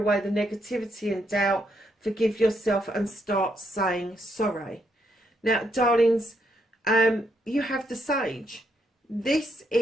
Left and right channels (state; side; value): normal; both; correlation 0.77